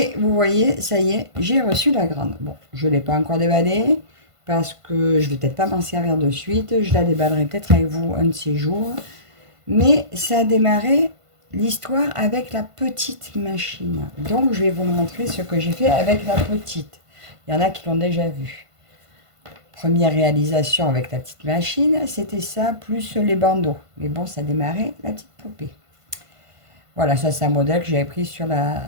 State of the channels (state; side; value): late; left; 1.5 ms